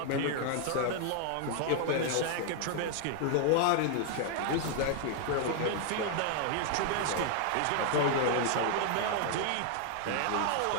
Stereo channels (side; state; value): both; different; correlation 0.00